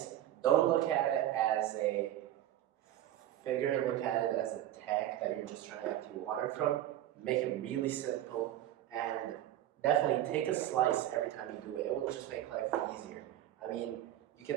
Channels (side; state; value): left; quieter; 12.7 dB